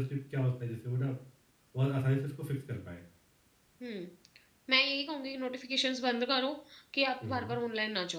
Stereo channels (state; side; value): identical; both; correlation 1.00